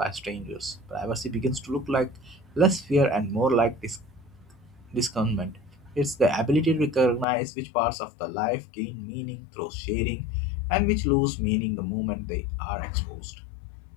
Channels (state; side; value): drops out; right; at 7.2 s